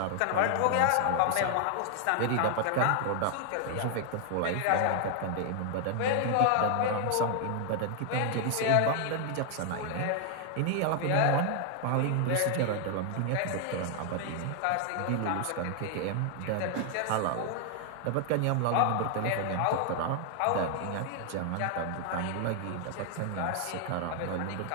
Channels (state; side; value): different; both; correlation 0.00